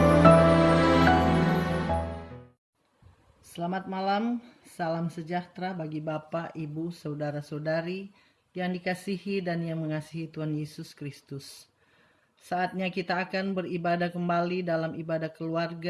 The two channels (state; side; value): identical; both; correlation 1.00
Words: malam, salam sejahtera bagi Bapak, Ibu, Saudara-saudari yang dikasihi dan yang mengasihi Tuhan Yesus Kristus. Saatnya kita akan beribadah kembali dalam ibadah